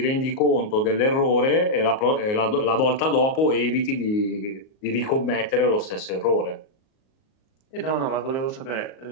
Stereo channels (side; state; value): right; late; 38 ms